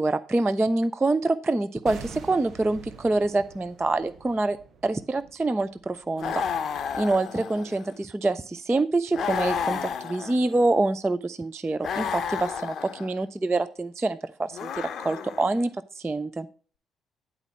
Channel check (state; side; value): normal; both; correlation 0.91